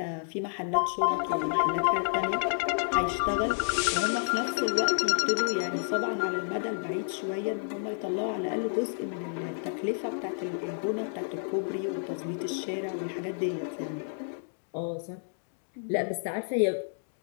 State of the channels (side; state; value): right; silent; digital silence